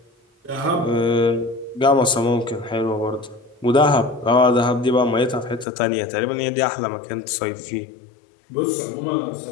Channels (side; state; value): right; drops out; at 5.7 s